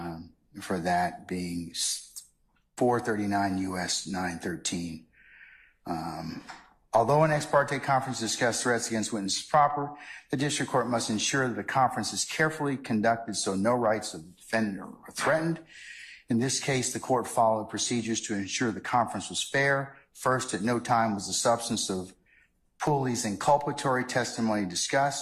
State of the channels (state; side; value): identical; both; correlation 1.00